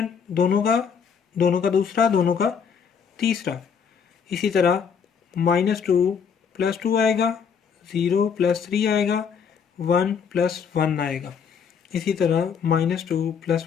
दोनों का दूसरा, दोनों का तीसरा। इसी तरह -2 प्लस 2 आएगा, 0 प्लस 3 आएगा, 1 प्लस 1 आएगा। इसी तरह -2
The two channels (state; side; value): quieter; right; 6.7 dB